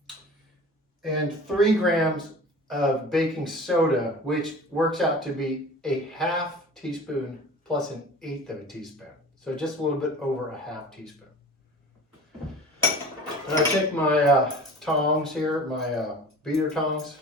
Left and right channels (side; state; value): both; normal; correlation 0.40